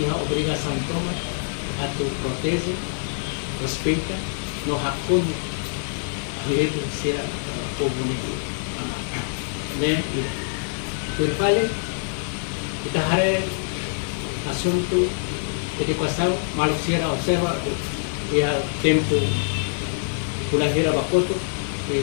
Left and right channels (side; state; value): right; silent; digital silence